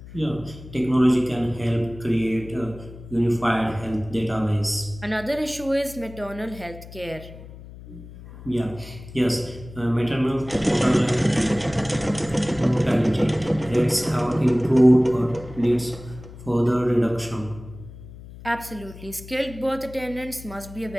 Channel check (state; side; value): noise; left; hum, 16 dB below the sound